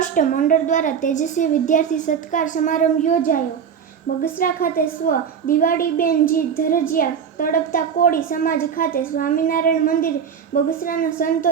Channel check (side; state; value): left; quieter; 7.4 dB